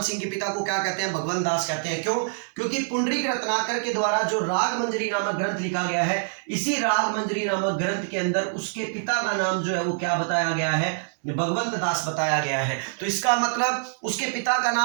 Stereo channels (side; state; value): left; silent; digital silence